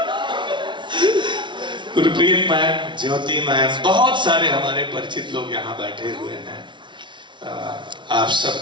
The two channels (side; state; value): left; late; 0.23 ms